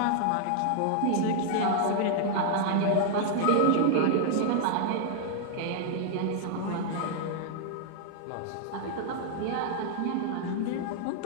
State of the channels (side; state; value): both; different; correlation 0.00